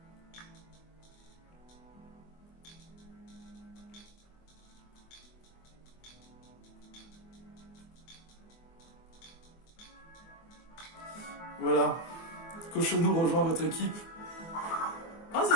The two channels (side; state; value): right; late; 24 ms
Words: Voilà. Cochonou rejoint votre équipe. Ah,